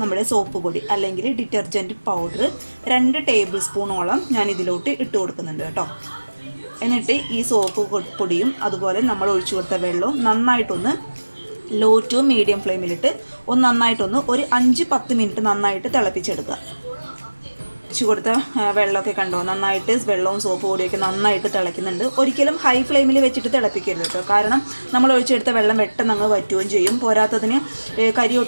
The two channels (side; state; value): both; inverted; correlation -1.00